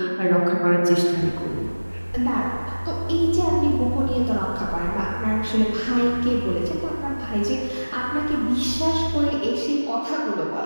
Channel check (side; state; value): both; inverted; correlation -1.00